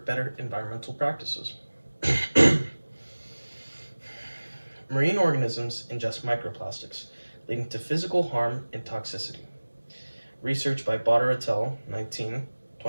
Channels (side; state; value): both; inverted; correlation -1.00